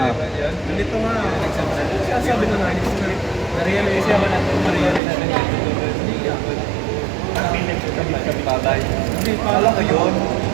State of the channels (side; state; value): left; drops out; at 5.0 s